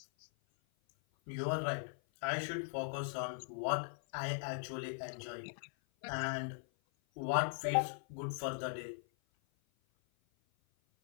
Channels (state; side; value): silent; right; 51 dB below the other